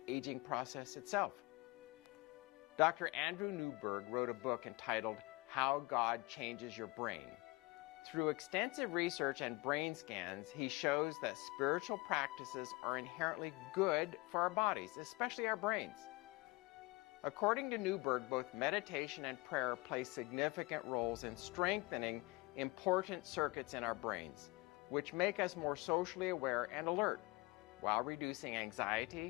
aging process itself. Dr. Andrew Newberg wrote a book entitled How God Changes Your Brain. Through extensive research and brain scans, he shows that spiritual practices are inherently good for our bodies, especially our brains. According to Newberg, both meditation and prayer play significant roles in strengthening important circuits in our brains, which make us more socially aware and alert, while reducing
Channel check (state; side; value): quieter; right; 23.8 dB